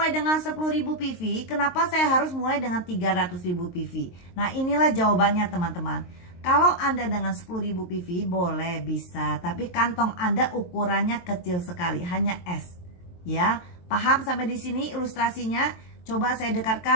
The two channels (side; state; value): right; late; 23 ms